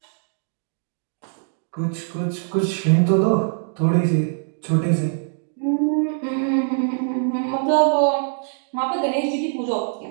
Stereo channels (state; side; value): silent; left; digital silence